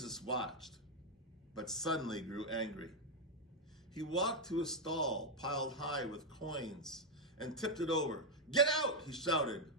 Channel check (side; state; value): both; normal; correlation 0.02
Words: watched, but suddenly grew angry. He walked to a stall piled high with coins and tipped it over. Get out, he shouted.